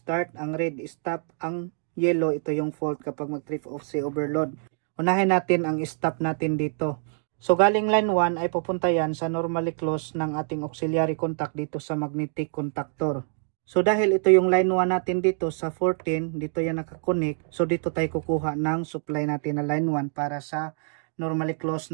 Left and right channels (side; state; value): left; silent; 61 dB below the other